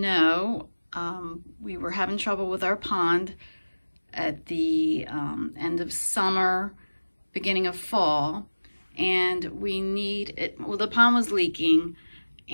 we were having trouble with our pond at the end of summer, beginning of fall, and we need it. Well, the pond was leaking,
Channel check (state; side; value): inverted; both; correlation -1.00